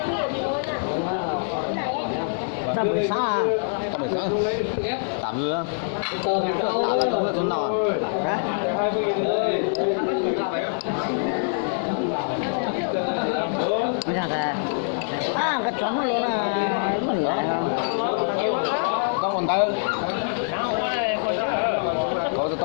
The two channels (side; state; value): right; silent; digital silence